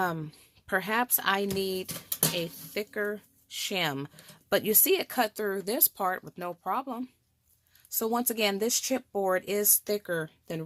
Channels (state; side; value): identical; both; correlation 1.00